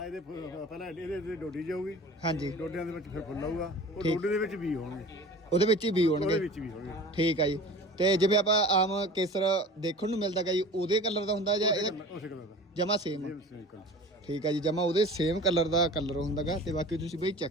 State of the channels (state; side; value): normal; both; correlation 0.40